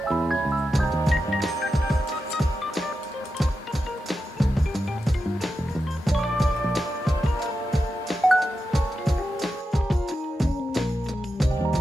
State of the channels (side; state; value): both; normal; correlation 0.89